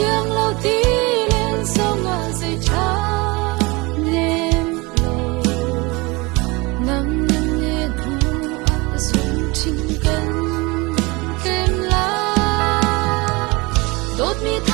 lâu ti lên song a dây cha nem lâu nam nam ne thu a sung chin kan kem la đốt mi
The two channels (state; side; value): quieter; left; 25.1 dB